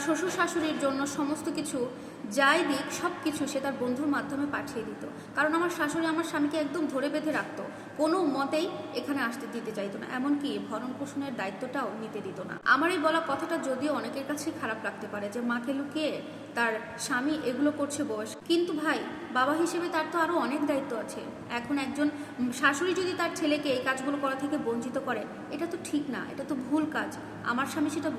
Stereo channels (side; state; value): both; identical; correlation 1.00